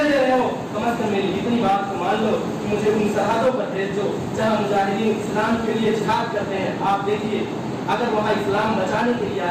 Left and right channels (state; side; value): identical; both; correlation 1.00